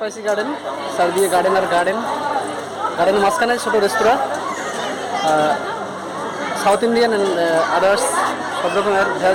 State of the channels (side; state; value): both; identical; correlation 1.00